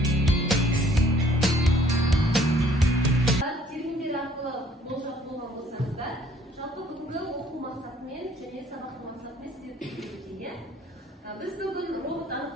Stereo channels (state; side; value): normal; both; correlation 0.59